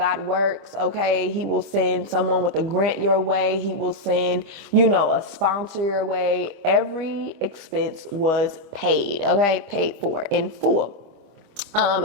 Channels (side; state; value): left; late; 25 ms